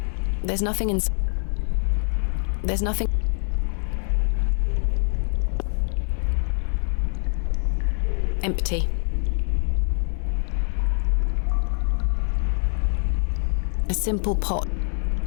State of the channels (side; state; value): right; silent; 62 dB below the other